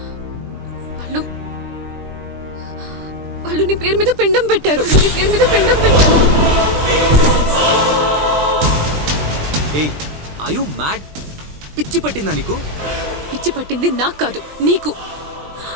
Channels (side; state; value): left; late; 20 ms